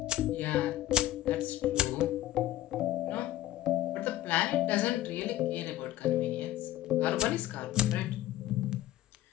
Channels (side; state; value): right; quieter; 14.4 dB